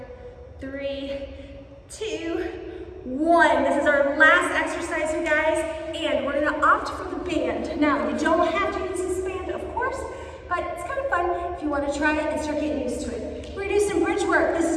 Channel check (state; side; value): identical; both; correlation 1.00